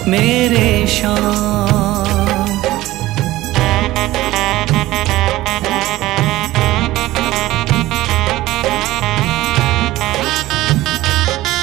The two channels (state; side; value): quieter; left; 16.9 dB